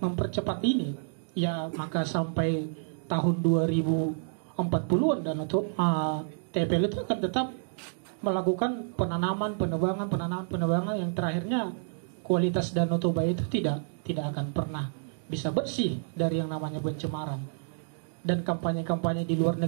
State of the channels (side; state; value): left; silent; digital silence